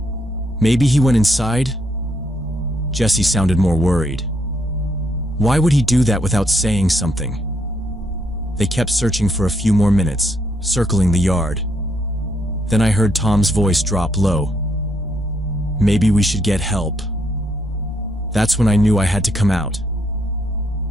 Maybe he went inside?" Jesse sounded more worried. Why would he do that without saying something? They kept searching for a few more minutes, circling the yard. Then I heard Tom's voice drop low. "Maybe we should get help." That's when I knew I had to come out.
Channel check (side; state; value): both; normal; correlation 0.74